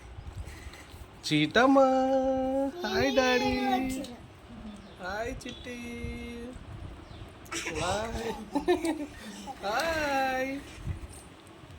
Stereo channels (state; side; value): identical; both; correlation 1.00